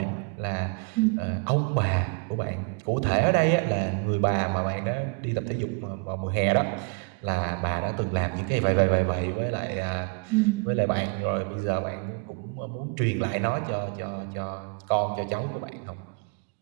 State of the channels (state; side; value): quieter; left; 34.7 dB